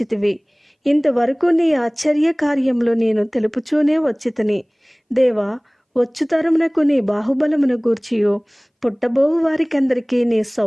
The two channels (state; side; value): identical; both; correlation 1.00